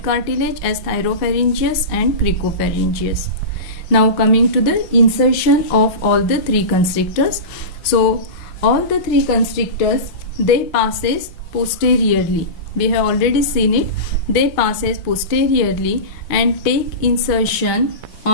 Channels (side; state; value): right; late; 5.7 ms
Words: cartilage as thyropharyngeus and cricopharyngeus. Now coming to the insertion of all the 3 constrictors. So all the 3 constrictors, they passes posteriorly. We have already seen it. They passes posteriorly and take insertion